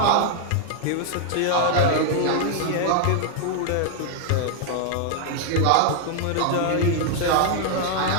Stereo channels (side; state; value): both; different; correlation 0.00